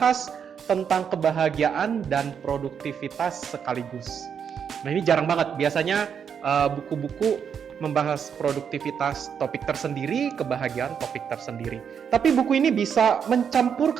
tentang kebahagiaan dan produktivitas sekaligus. Nah, ini jarang banget. Biasanya buku-buku membahas produktivitas topik tersendiri, kebahagiaan topik tersendiri. Tapi buku ini bisa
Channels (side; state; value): left; quieter; 7.4 dB